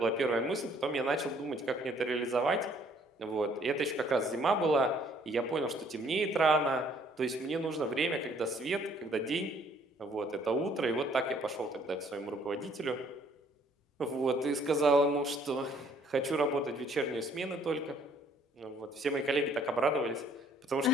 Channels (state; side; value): normal; both; correlation 0.61